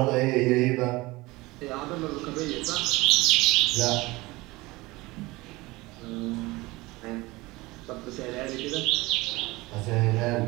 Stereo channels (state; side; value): quieter; left; 21.3 dB